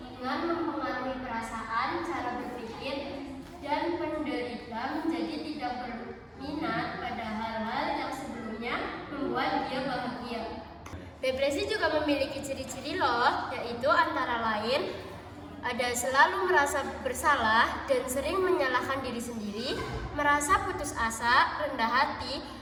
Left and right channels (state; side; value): identical; both; correlation 1.00